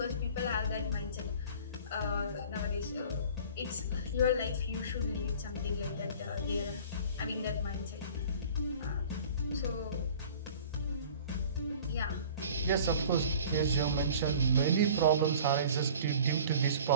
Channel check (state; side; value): inverted; both; correlation -0.45